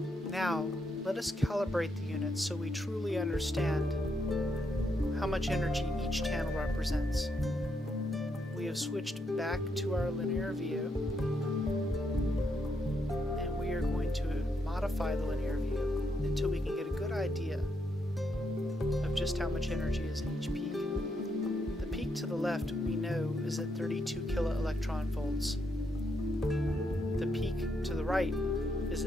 Now, let us calibrate the unit so we truly understand how much energy each channel represents. We have switched back to our linear view, and we are going to modify the linear view until we can get a good idea of just how much energy is in each peak. The peak to the left we know is at 32 kiloelectron volts. The peak to the right is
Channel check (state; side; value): normal; both; correlation 0.79